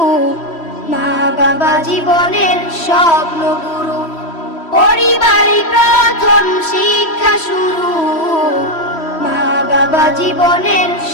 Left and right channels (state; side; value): late; right; 3.1 ms